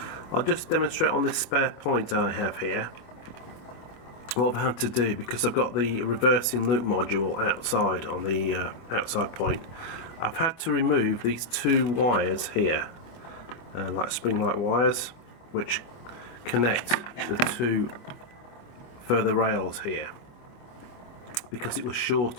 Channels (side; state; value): right; late; 25 ms